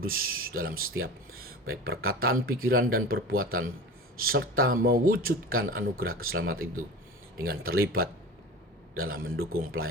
dalam setiap baik perkataan, pikiran, dan perbuatan, serta mewujudkan anugerah keselamatan itu dengan terlibat dalam mendukung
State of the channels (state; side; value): normal; both; correlation 0.33